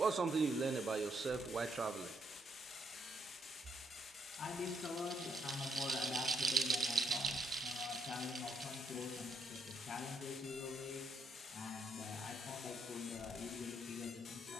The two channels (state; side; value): normal; both; correlation 0.71